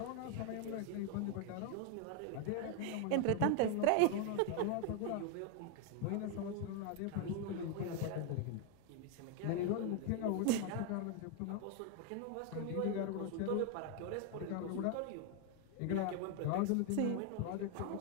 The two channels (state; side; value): different; both; correlation 0.01